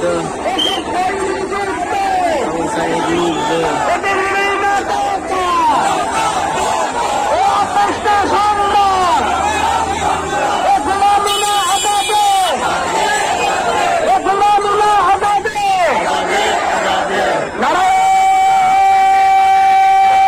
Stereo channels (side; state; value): both; identical; correlation 1.00